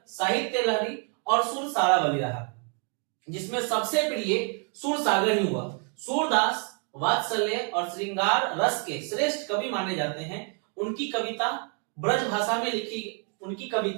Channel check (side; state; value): left; quieter; 39.9 dB